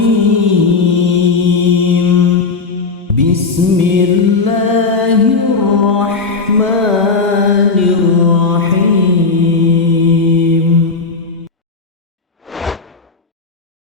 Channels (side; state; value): right; quieter; 4.3 dB